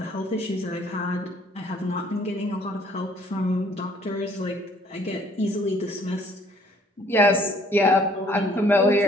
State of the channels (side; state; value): both; normal; correlation 0.60